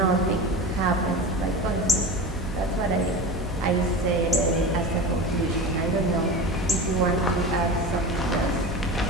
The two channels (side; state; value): both; normal; correlation 0.30